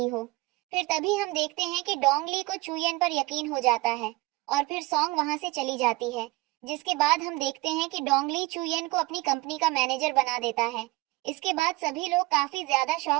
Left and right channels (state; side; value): quieter; left; 22.3 dB